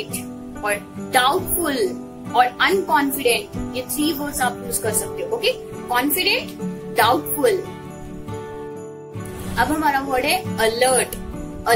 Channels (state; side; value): identical; both; correlation 1.00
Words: और डाउटफुल और अनकॉन्फिडेंट, ये 3 वर्ड्स आप यूज कर सकते हो। Okay, confident, doubtful. अब हमारा वर्ड है अलर्ट।